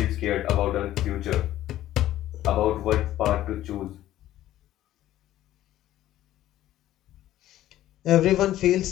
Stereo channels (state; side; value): quieter; right; 13.7 dB